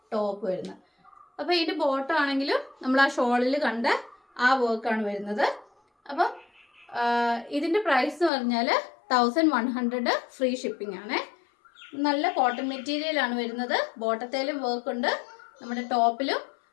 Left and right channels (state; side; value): drops out; right; at 8.3 s